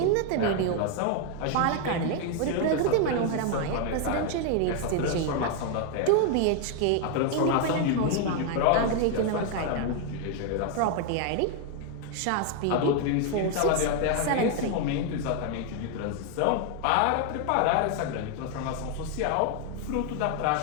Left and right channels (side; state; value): both; different; correlation 0.00